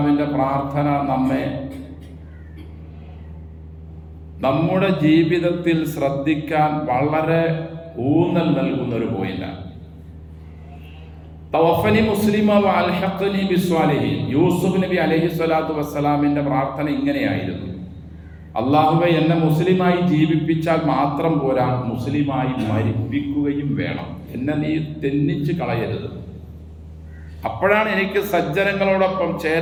പ്രാർത്ഥന നമ്മെ നമ്മുടെ ജീവിതത്തിൽ ശ്രദ്ധിക്കാൻ വളരെ ഊന്നൽ നൽകുന്ന ഒരു പോയിന്റാണ്. തവഫനി മുസ്ലിമ വഅൽഹഖ്നി ബിസ്വാലിഹീൻ. യൂസുഫ് നബി അലൈഹിസ്സലാത്തു വസ്സലാമിൻ്റെ പ്രാർത്ഥന ഇങ്ങനെയായിരുന്നു: അല്ലാഹുവേ, എന്നെ മുസ്ലിമായി ജീവിപ്പിച്ചാൽ മാത്രം പോരാ, മുസ്ലിമായി മരിപ്പിക്കുകയും വേണം. എന്നെ നീ തെന്നിച്ച് കളയരുത്. അപ്പോഴാണ് എനിക്ക് സജ്ജനങ്ങളോടൊപ്പം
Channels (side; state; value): both; identical; correlation 1.00